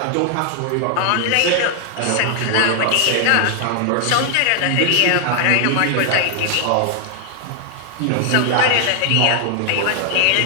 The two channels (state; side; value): different; both; correlation 0.00